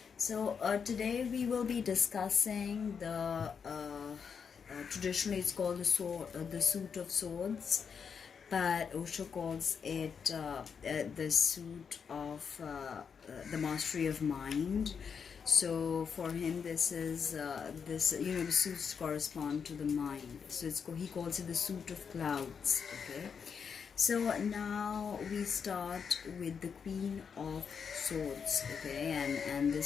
So today we will be discussing traditionally it's called the Suit of Swords, but Osho calls it the Suit of the Mastery of Mind. So for him, this is the suits correspond to the mind. So he calls it the Suit of Clouds. Okay. So now we start with the Queen of Swords. Okay, and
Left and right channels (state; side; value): quieter; right; 6.5 dB